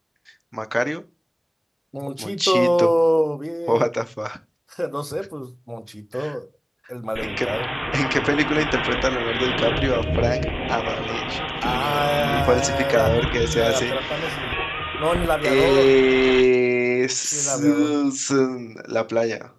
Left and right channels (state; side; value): identical; both; correlation 1.00